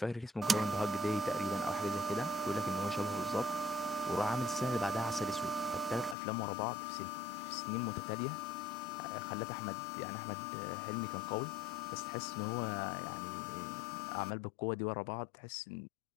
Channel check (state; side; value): drops out; right; at 6.2 s